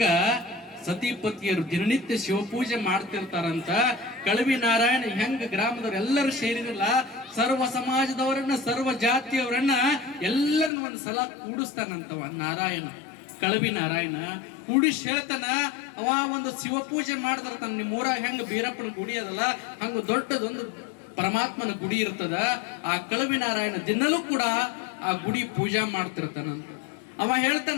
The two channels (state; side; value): drops out; right; at 10.7 s